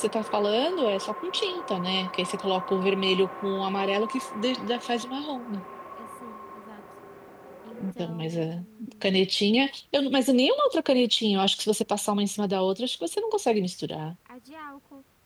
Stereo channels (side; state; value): both; identical; correlation 1.00